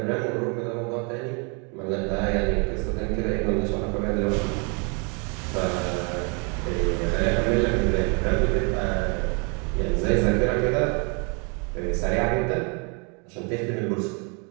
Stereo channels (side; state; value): left; quieter; 34.6 dB